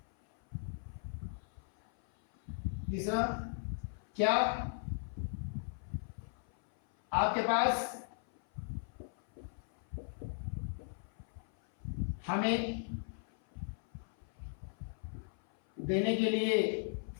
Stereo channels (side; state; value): right; silent; 53 dB below the other